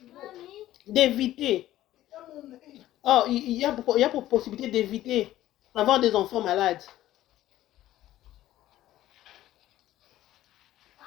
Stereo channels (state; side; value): quieter; right; 14.1 dB